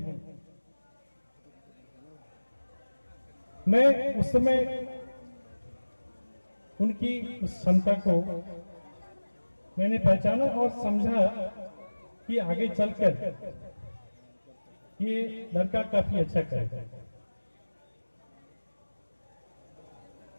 मैं उस समय उनकी उस क्षमता को मैंने पहचाना और समझा कि आगे चलकर ये लड़का काफी अच्छा करेगा।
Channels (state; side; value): inverted; both; correlation -1.00